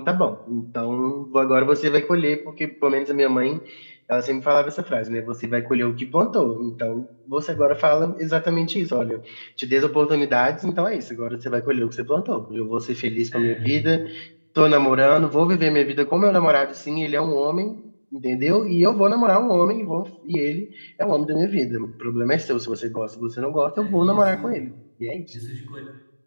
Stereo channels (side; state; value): both; inverted; correlation -1.00